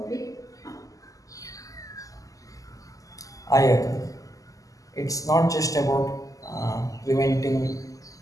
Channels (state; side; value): late; right; 0.17 ms